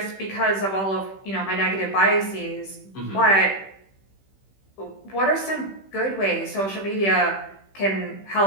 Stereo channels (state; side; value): late; right; 15 ms